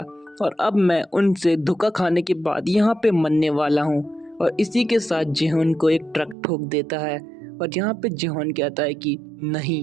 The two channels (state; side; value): drops out; left; at 6.4 s